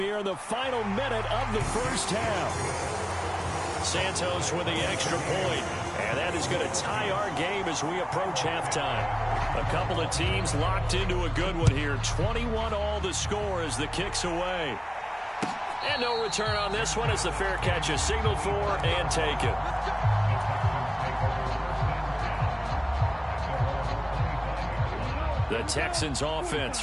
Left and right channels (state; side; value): identical; both; correlation 1.00